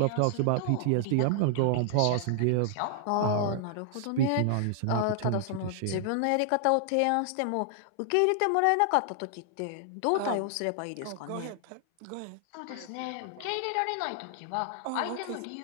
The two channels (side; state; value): both; different; correlation -0.01